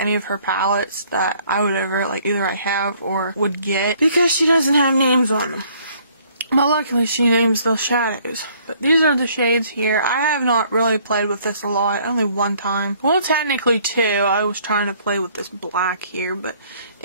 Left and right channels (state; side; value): inverted; both; correlation -0.61